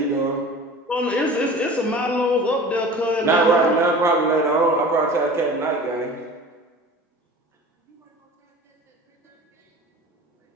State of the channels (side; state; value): both; normal; correlation 0.40